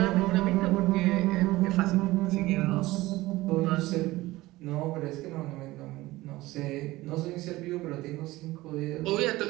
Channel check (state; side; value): quieter; left; 18.5 dB